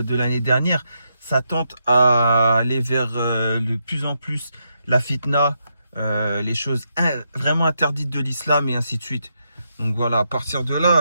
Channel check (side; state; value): both; inverted; correlation -0.81